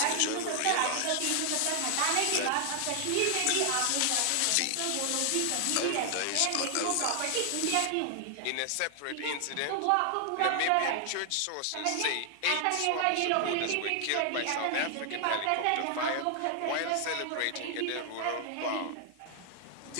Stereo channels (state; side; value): different; both; correlation 0.00